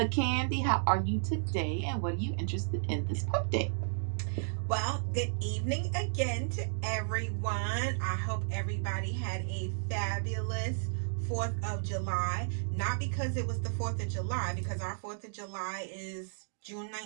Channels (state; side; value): silent; left; digital silence